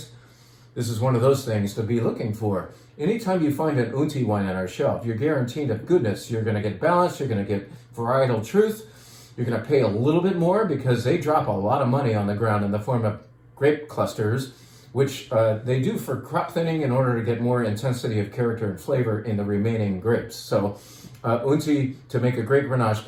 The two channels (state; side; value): identical; both; correlation 1.00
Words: This is one of those things to be looking for. Anytime you find an Unti wine on our shelf, you're guaranteed of goodness. You're going to get balance. You're going to get varietal truth. You're going to pay a little bit more because they drop a lot of money on the ground in the form of grape clusters, which they do for crop thinning in order to get more intensity of character and flavor in the remaining grapes. So Unti, to make a great Grenache